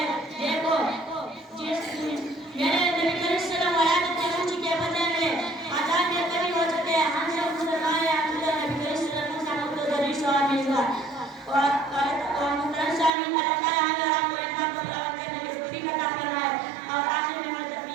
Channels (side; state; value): left; drops out; at 13.1 s